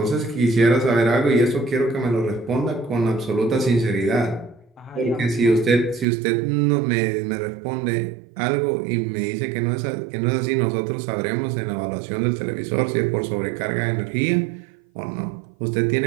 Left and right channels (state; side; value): drops out; left; at 6.1 s